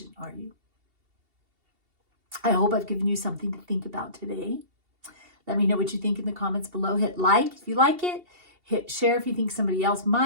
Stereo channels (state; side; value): late; left; 2.7 ms